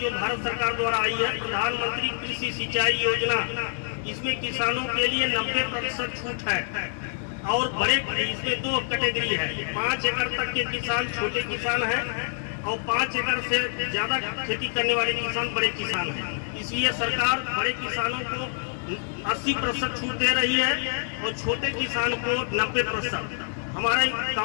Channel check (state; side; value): silent; right; 61 dB below the other